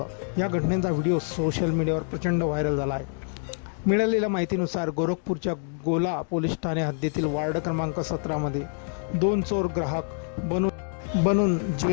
या घटनेचा व्हिडिओ सोशल मीडियावर प्रचंड व्हायरल झाला आहे। मिळालेल्या माहितीनुसार गोरखपूरच्या गोला पोलीस ठाणे हद्दीतील वार्ड क्रमांक 17 मध्ये 2 चोर ग्राहक बनून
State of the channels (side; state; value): right; silent; 57 dB below the other